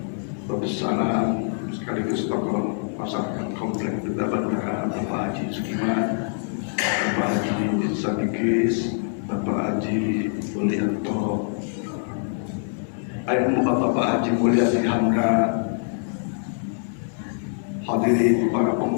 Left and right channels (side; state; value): right; silent; digital silence